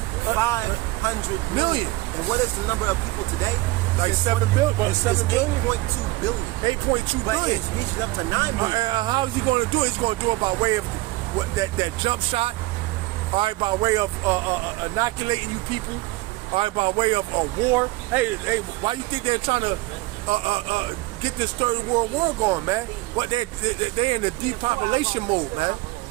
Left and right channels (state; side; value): quieter; left; 20.7 dB